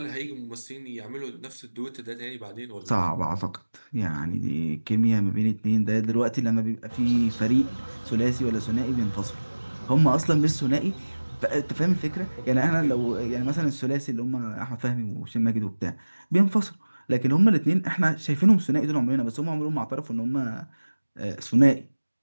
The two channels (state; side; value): inverted; both; correlation -1.00